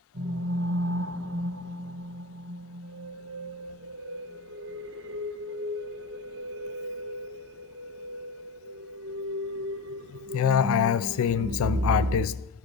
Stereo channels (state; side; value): quieter; right; 4.1 dB